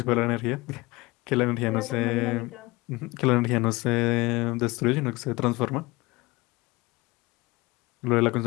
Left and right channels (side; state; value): right; quieter; 22.3 dB